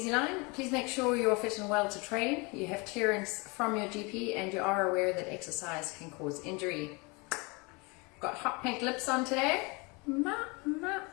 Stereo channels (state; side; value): quieter; right; 28.4 dB